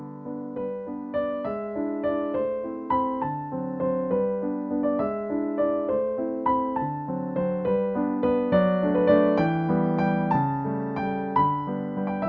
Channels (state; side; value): identical; both; correlation 1.00